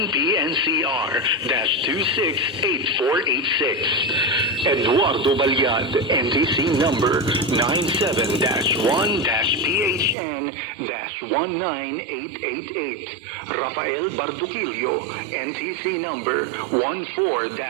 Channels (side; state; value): left; drops out; at 10.2 s